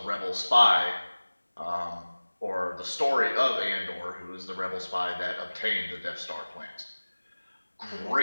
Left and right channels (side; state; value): both; inverted; correlation -1.00